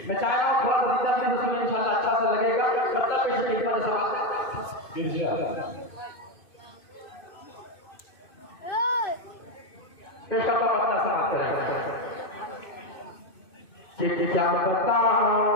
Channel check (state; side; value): late; right; 2.6 ms